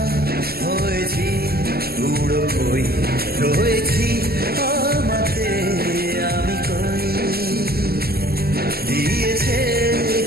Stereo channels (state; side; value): late; left; 0.45 ms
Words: হয়েছি উড়ো কই, রয়েছি আমাতে আমি কই, দিয়েছে